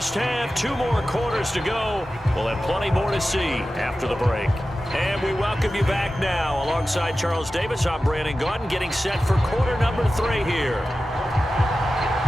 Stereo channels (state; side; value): normal; both; correlation 0.94